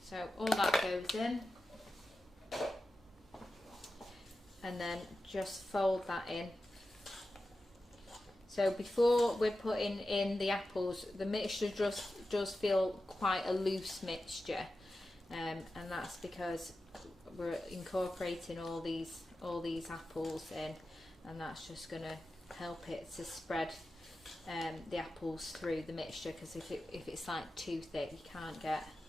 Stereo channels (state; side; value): normal; both; correlation 0.93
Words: So all that goes in, and then just fold that in. So before we're putting in the apples, the mixture does feel quite a loose mixture, and that's because we're incorporating all these apples in, and that's just going to help it to spread the apples through the mixture. Because if it's like too thick, you can't